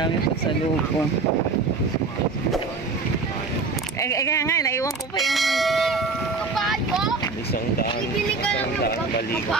pasalubong. Kaya nga, naiwan ko pa yung Kabayo? Isang daan. Bibili ka ng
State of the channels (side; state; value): left; quieter; 4.1 dB